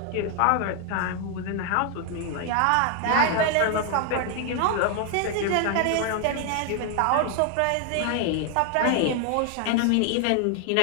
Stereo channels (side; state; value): both; different; correlation 0.01